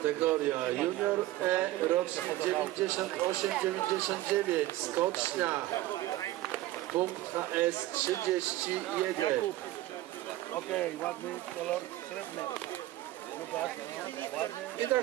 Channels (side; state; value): left; quieter; 16.0 dB